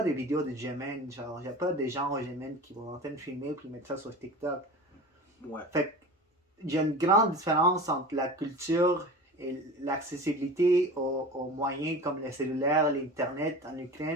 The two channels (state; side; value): normal; both; correlation 0.35